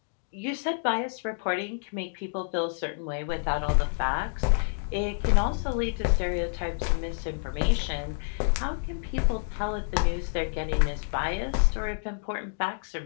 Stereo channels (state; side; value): silent; right; digital silence